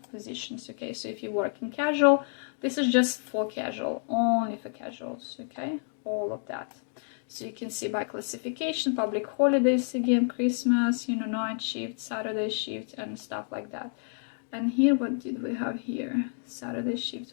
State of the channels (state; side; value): silent; right; 58 dB below the other